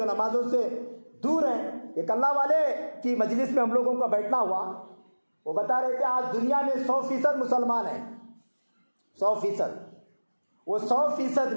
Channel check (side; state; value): both; inverted; correlation -1.00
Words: नमाजों से दूर हैं। एक अल्लाह वाले की मजलिस में हम लोगों का बैठना हुआ, वो बता रहे थे आज दुनिया में 100% मुसलमान हैं, 100%। वो 100%